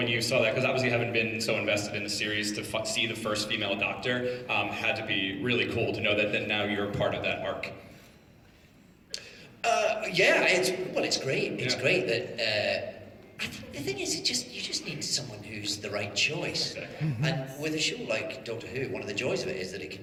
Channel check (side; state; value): both; identical; correlation 1.00